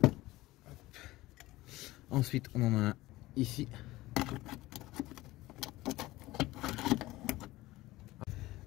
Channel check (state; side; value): quieter; right; 18.2 dB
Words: Hop. Ensuite, on en a un ici.